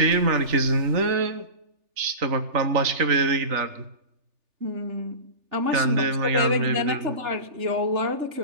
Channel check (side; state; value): left; late; 3.4 ms